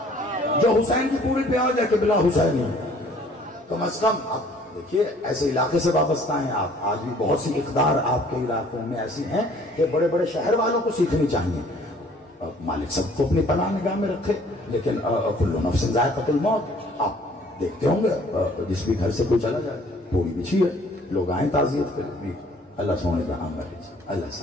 جو حسین کی پوری پہ آ جائے کہ بلا حسینی کم از کم۔ اب دیکھیے ایسے علاقے سے وابستہ ہیں آپ، آج بھی بہت سی اقدار آپ کے علاقوں میں ایسی ہیں کہ بڑے بڑے شہر والوں کو سیکھنی چاہیے۔ مالک سب کو اپنی پناہ نگاہ میں رکھے، لیکن کل نفس ذائقۃ الموت، آپ دیکھتے ہوں گے جس بھی گھر سے کوئی چلا جائے پوری بچھی ہے، لوگ آئیں تعزیت کریں، اللہ سونے کا عام ہے، اللہ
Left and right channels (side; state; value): both; normal; correlation 0.56